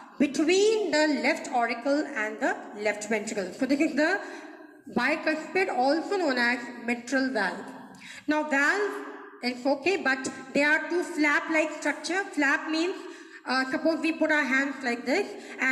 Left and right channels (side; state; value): both; identical; correlation 1.00